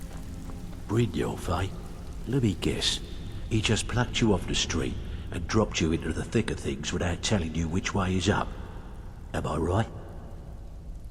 Brynjolf, eh? Let me guess. He just plucked you off the street and dropped you into the thick of things without telling you which way is up. Am I right?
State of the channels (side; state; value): both; identical; correlation 1.00